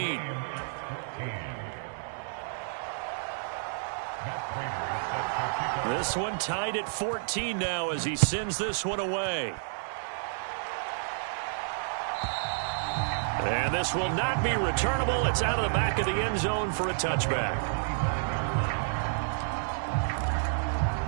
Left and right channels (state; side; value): silent; left; digital silence